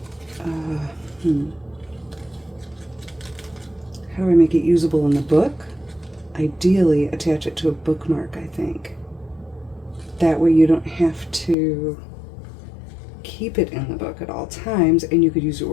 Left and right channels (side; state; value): right; drops out; at 11.6 s